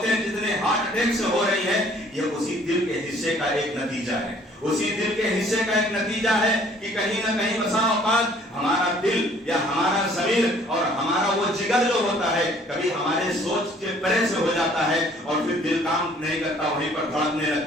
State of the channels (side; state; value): both; normal; correlation 0.58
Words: جتنے ہارٹ اٹیک سے ہو رہی ہے، یہ اسی دل کے حصے کا ایک نتیجہ ہے، اسی دل کے حصے کا ایک نتیجہ ہے کہ کہیں نہ کہیں بسا اوقات ہمارا دل یا ہمارا ضمیر اور ہمارا وہ جگر جو ہوتا ہے کبھی ہمارے سوچ کے پرے سے ہو جاتا ہے اور پھر دل کام نہیں کرتا، وہیں پر دھڑکنے